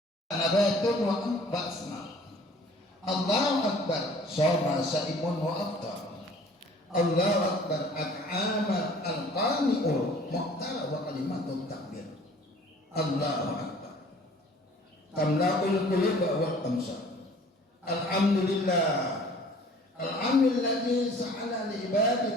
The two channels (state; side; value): normal; both; correlation 0.51